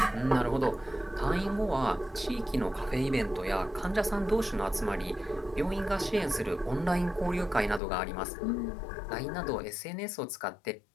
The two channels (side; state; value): right; drops out; at 7.8 s